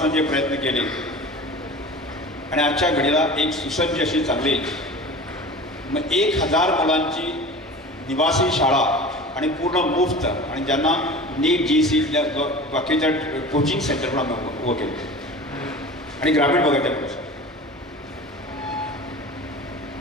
जे प्रयत्न केले आणि आजच्या घडीला एक सुसज्ज अशी चांगली मग 1000 मुलांची निवासी शाळा आणि पूर्ण मुफ्त आणि ज्यांना नीट GC बाकीच्या कोचिंग सेंटर पण आम्ही उभं केलं आणि ग्रामीण भागातल्या मुलांसाठी.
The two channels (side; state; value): both; normal; correlation 0.37